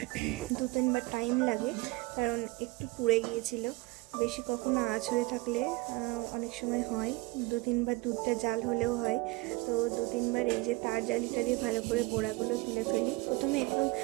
2-3 বার টাইম লাগে, কারণ একটু পুড়ে গিয়েছিল। বেশি কখনো আঁচ হয়ে থাকলে অনেক সময় হয় 2-3 বার দুধটা জাল হলেও হয়। তো 2-3 বার এই যে তার জালিটা দিয়ে ভালো করে গোড়াগুলো তুলে ফেলি। প্রথমে একদম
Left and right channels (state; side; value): quieter; left; 22.3 dB